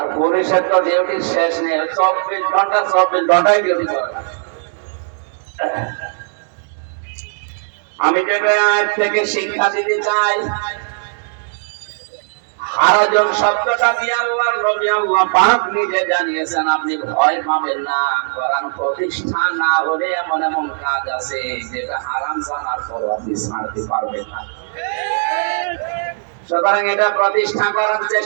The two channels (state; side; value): silent; left; 64 dB below the other